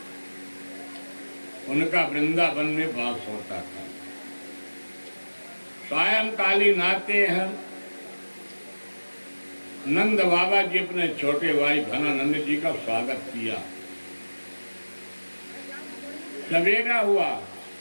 उनका वृंदावन में वास होता था। सायंकालीन आते हैं, नंद बाबा जी अपने छोटे भाई घनानंद जी का स्वागत किया। सवेरा हुआ,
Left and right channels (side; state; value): both; inverted; correlation -1.00